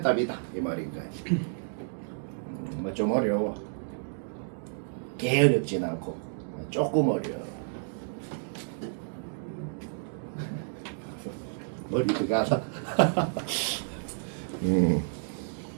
답이다. 이 말인 거야. 뭐 좀 어려워. 개 어렵진 않고 조금 어려워. 머리가 가다.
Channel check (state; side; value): silent; left; digital silence